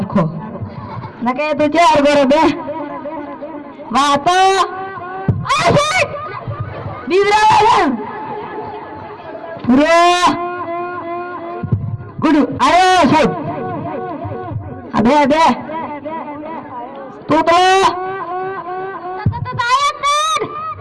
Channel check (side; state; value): both; identical; correlation 1.00